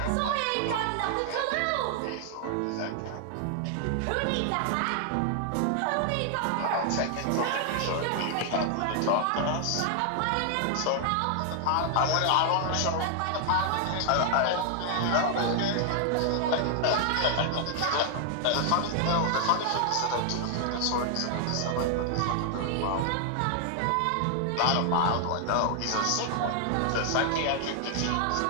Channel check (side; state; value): both; different; correlation 0.00